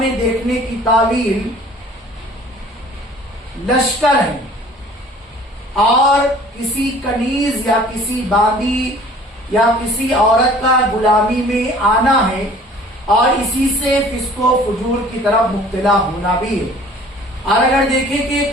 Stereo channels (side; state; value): both; normal; correlation 0.50